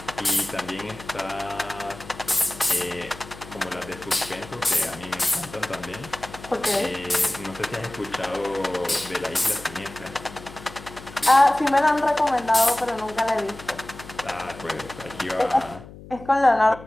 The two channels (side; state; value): left; noise; hum, 17 dB below the sound